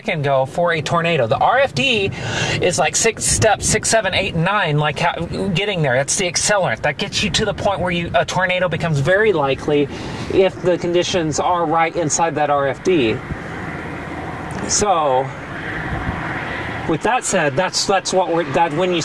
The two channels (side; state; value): both; identical; correlation 1.00